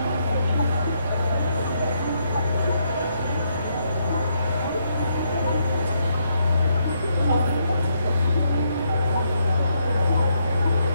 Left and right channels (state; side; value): inverted; both; correlation -0.76